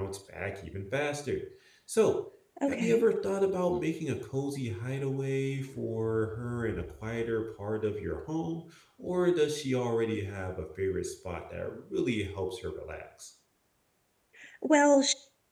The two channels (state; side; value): identical; both; correlation 1.00